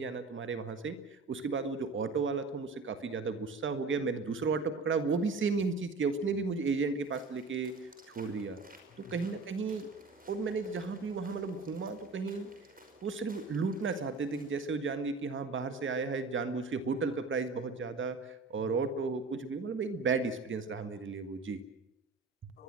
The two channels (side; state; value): left; quieter; 4.1 dB